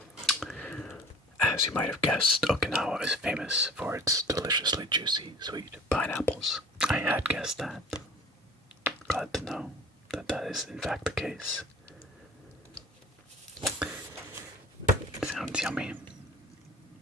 As you might have guessed, Okinawa is famous for its deliciously juicy, sweet pineapples. I had guessed that. Glad to know that that is in fact the case. Sounds yummy.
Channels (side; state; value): both; normal; correlation 0.44